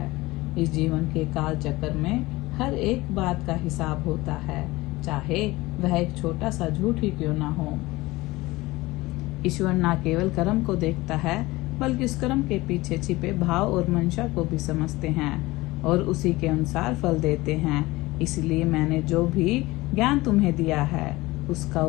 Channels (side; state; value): right; quieter; 20.3 dB